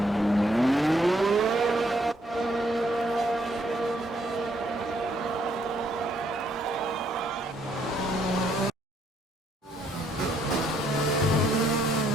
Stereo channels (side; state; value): both; normal; correlation 0.70